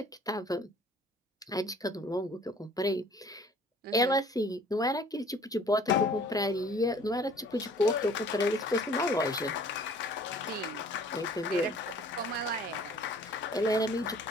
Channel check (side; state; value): both; normal; correlation 0.53